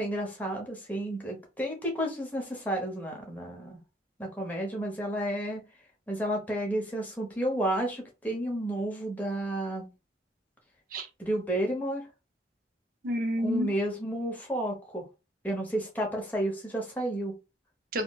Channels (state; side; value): normal; both; correlation 0.66